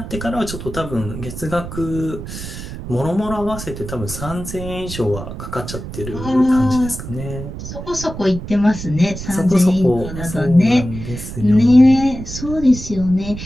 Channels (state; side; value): noise; right; rumble, 9 dB below the sound